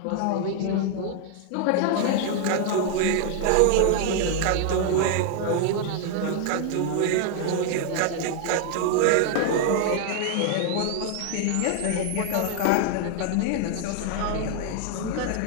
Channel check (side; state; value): both; different; correlation 0.00